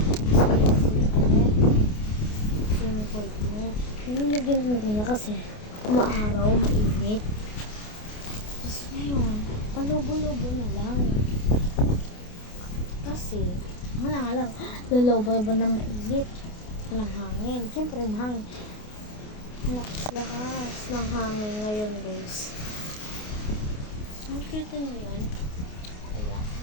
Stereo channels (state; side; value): late; right; 28 ms